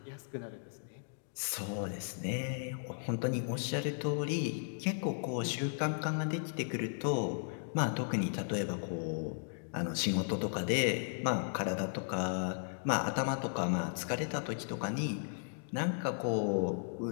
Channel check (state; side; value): silent; right; digital silence